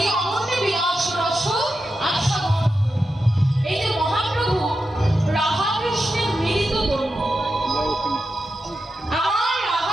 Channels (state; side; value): normal; both; correlation 0.89